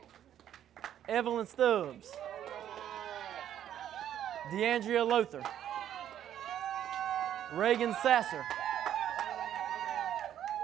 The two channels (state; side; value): quieter; left; 10.7 dB